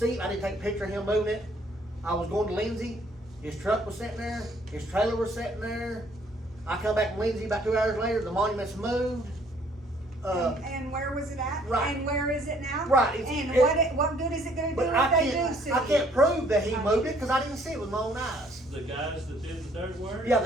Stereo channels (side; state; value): both; normal; correlation 0.62